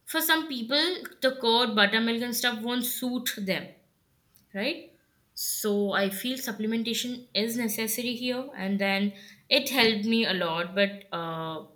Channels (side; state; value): both; identical; correlation 1.00